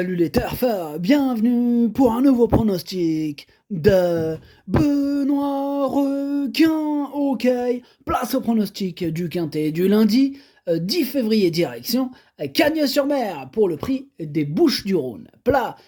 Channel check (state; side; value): identical; both; correlation 1.00